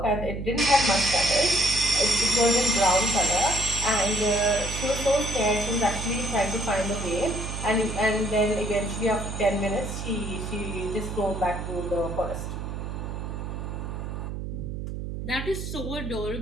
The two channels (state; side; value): noise; right; hum, 6 dB below the sound